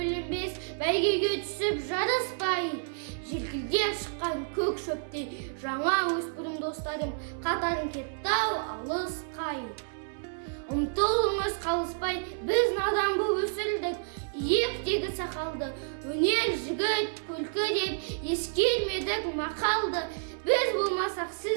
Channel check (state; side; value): silent; left; 58 dB below the other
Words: бәйгеге түсіп жарыспай. Желкілдеп шыққан көк шөптей жаңа өспірім достарым, қатарын кетті-ау алысқай. Ұмтылыңыз қалыспай, біз надан боп өсірдік, иектегі сақалды. Өнер жігіт күлкі деп ескермедік мақалды. Біз болмасақ